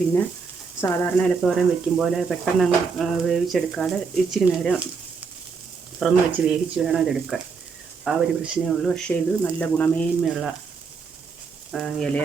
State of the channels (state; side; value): quieter; left; 5.2 dB